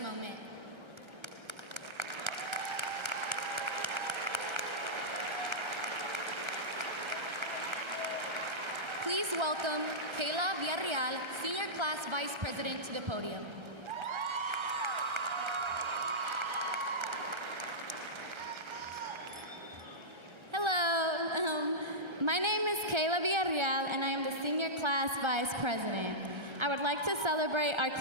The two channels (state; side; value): late; left; 1.3 ms